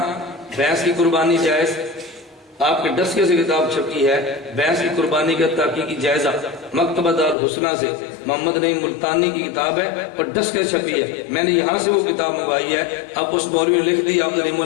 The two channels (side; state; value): right; drops out; at 7.4 s